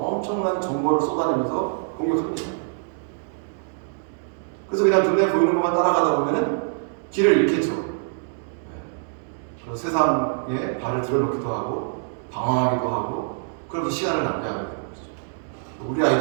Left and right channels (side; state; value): left; silent; digital silence